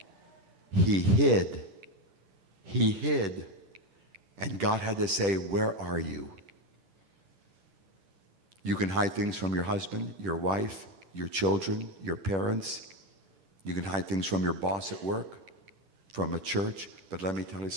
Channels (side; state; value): left; late; 10 ms